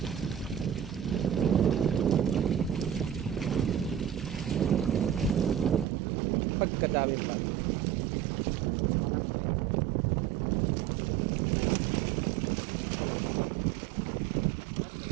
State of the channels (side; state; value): left; drops out; at 5.9 s